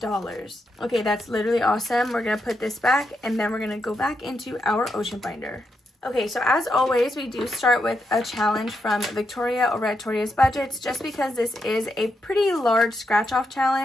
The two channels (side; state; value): both; normal; correlation 0.83